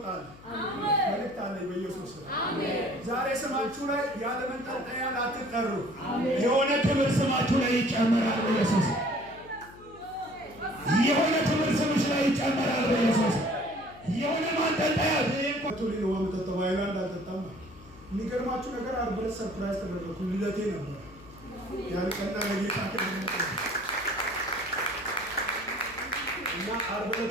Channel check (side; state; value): left; noise; hum, 21 dB below the sound